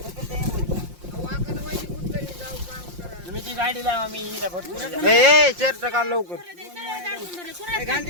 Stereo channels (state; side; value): late; left; 5.7 ms